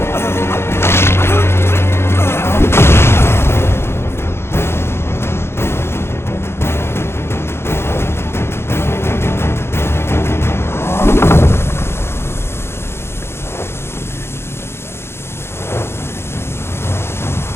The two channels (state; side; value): late; right; 0.12 ms